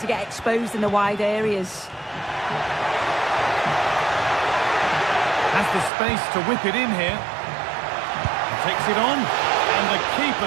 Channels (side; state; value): left; drops out; at 5.9 s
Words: get exposed in the wide areas. Has the space to whip it in here. Takes it on, and the